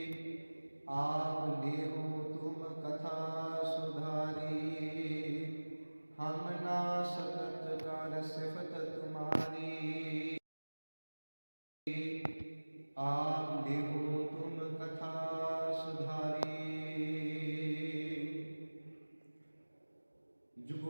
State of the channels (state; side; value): inverted; both; correlation -1.00